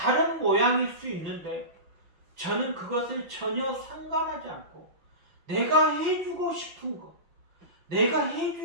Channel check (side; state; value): left; late; 5.9 ms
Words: 모양일 수 있는데 저는 그것을 전혀 상관하지 않고 내가 해주고 싶은 것, 내가